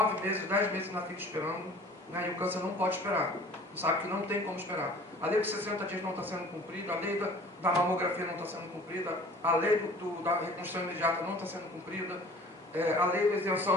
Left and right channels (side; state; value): both; normal; correlation 0.48